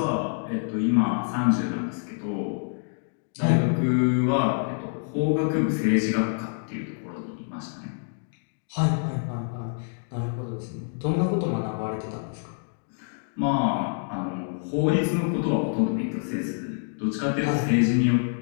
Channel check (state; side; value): silent; right; digital silence